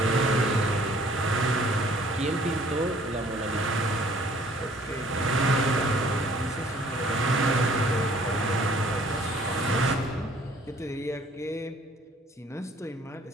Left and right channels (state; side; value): normal; both; correlation 0.57